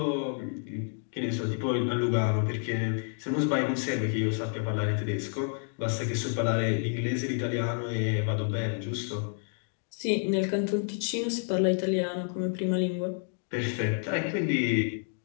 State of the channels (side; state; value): right; silent; 57 dB below the other